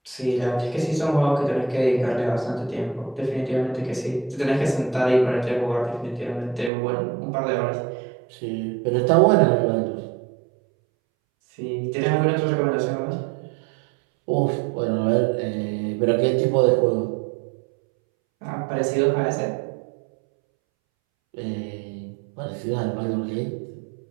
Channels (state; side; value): drops out; left; at 6.7 s